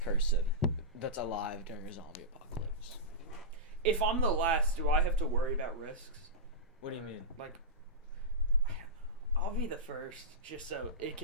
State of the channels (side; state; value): both; normal; correlation -0.13